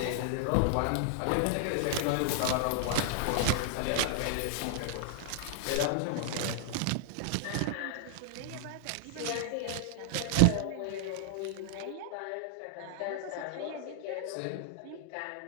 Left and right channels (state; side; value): different; both; correlation -0.01